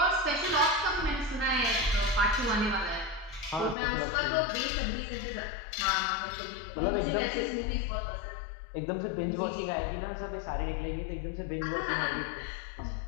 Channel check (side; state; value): right; drops out; at 3.8 s